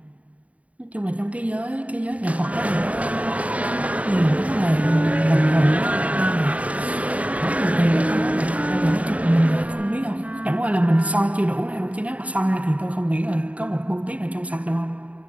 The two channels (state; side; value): late; left; 0.068 ms